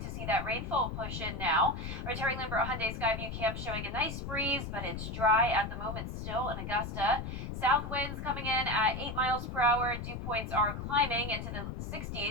to see that rainfall push in now. Our Terry Lambert Hyundai Skyview Camp showing a nice breeze, but it's dry at the moment still in Augusta. South winds coming in at 8 miles per hour. Dew points are climbing into the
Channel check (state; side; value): noise; left; rumble, 6 dB below the sound